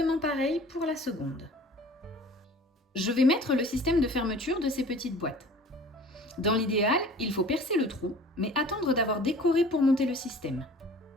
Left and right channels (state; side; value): normal; both; correlation 0.46